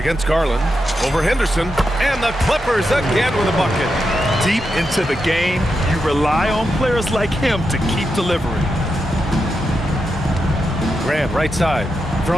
Garland. Over Henderson. And the Clippers again with a bucket. Deep into the game, you rely on players like him to keep delivering. Grant, right side.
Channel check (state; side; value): normal; both; correlation 0.86